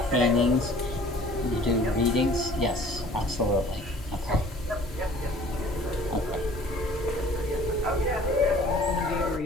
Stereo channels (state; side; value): normal; both; correlation 0.51